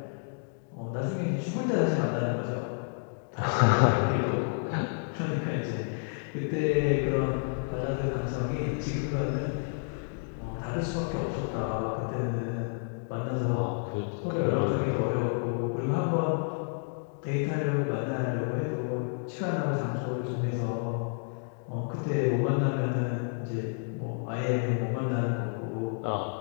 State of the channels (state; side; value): silent; right; 58 dB below the other